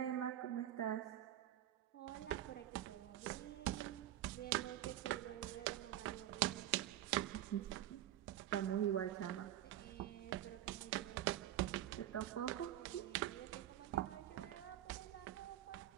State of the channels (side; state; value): left; quieter; 12.7 dB